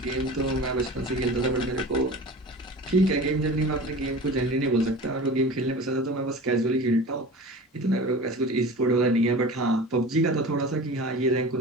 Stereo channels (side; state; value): both; normal; correlation 0.36